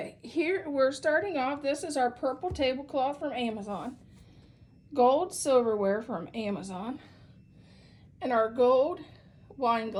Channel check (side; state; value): both; identical; correlation 1.00